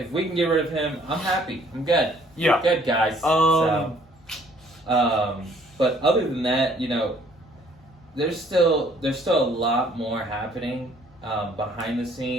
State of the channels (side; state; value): both; normal; correlation 0.60